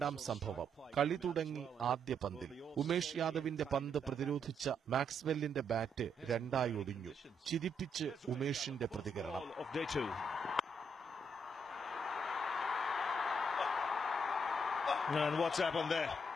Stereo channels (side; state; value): both; normal; correlation 0.76